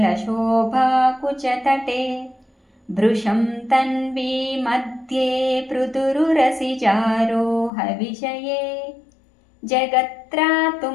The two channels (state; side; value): drops out; right; at 7.7 s